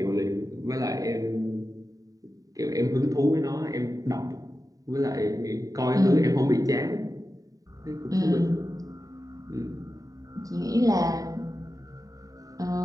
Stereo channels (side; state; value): left; late; 0.17 ms